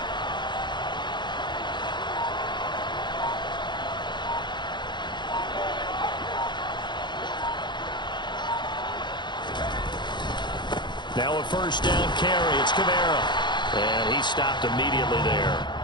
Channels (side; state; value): right; late; 0.22 ms